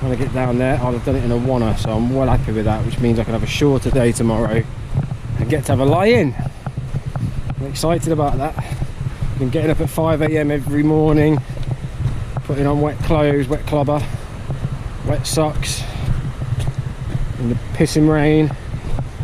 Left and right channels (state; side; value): identical; both; correlation 1.00